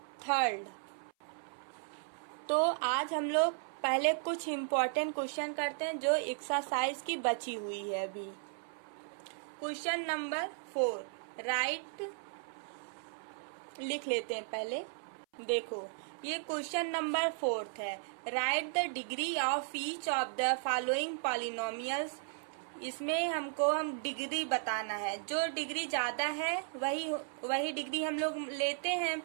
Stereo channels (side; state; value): left; silent; 54 dB below the other